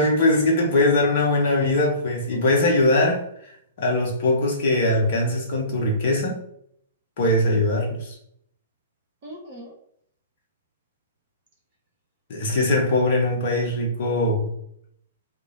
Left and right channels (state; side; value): inverted; both; correlation -0.43